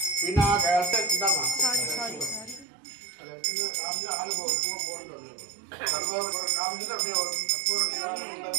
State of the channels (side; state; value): left; drops out; at 2.7 s